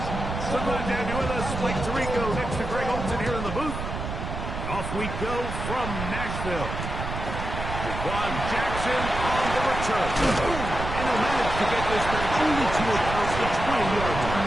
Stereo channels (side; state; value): right; noise; rumble, 5 dB below the sound